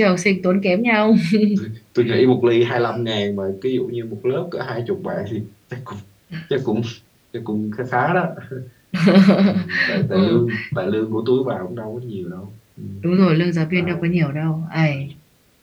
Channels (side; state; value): both; identical; correlation 1.00